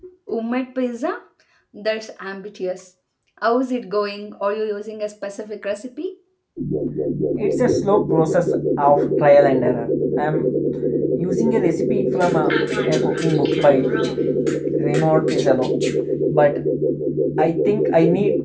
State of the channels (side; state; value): both; identical; correlation 1.00